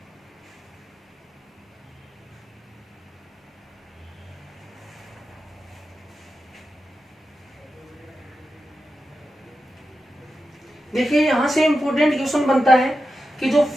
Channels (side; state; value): both; normal; correlation 0.90